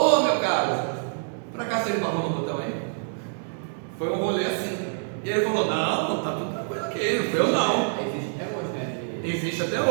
meu caro, pra cá você barrou no botão aí? Foi um rolê assim. E ele falou: não, tá tudo tranquilo aqui, não foi eu não. Existe até hoje, né? Existe até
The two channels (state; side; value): silent; left; digital silence